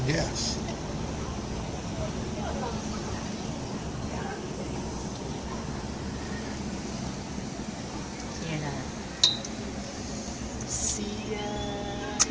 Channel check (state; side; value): identical; both; correlation 1.00